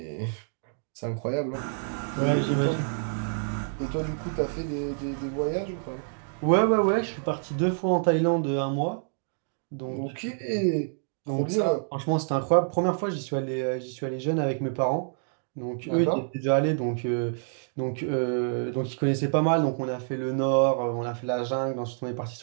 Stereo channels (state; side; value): silent; left; digital silence